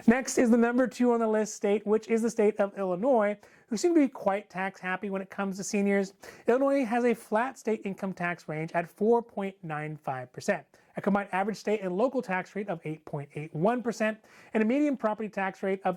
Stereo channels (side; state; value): both; identical; correlation 1.00